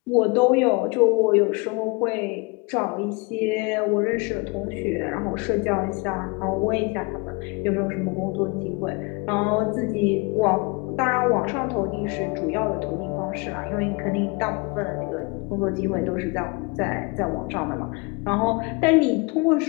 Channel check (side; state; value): right; quieter; 28.5 dB